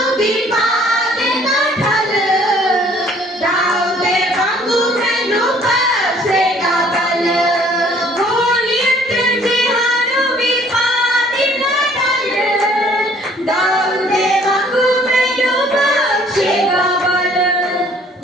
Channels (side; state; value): both; normal; correlation 0.58